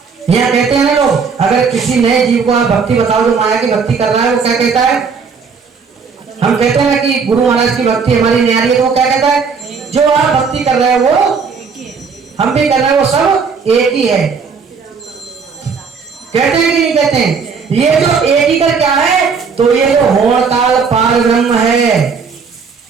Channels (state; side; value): quieter; left; 5.6 dB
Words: यहाँ कहते हैं ना लोग, अगर किसी नए जीव को आप भक्ति बताओ जो माया की भक्ति कर रहा है, वो क्या कहता है, हम कहते हैं ना कि गुरु महाराज की भक्ति हमारी न्यारी है, तो वो क्या कहता है, जो आप भक्ति कर रहे हैं वो हम भी कर रहे हैं, वो सब एक ही है। कहते हैं कि नहीं कहते हैं, ये जो एक ही कर क्या है, तो ये जो होड़ ताल पार ब्रह्म है,